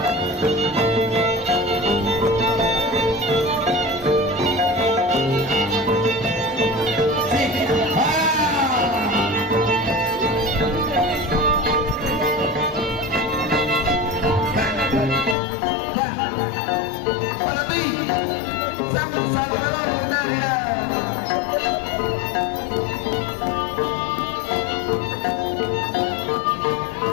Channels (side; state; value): right; drops out; at 15.4 s